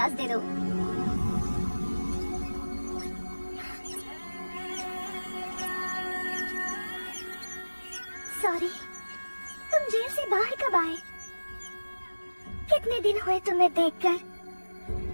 दे दो। सॉरी, तुम जेल से बाहर कब आए? कितने दिन हुए तुम्हें देखकर?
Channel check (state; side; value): inverted; both; correlation -1.00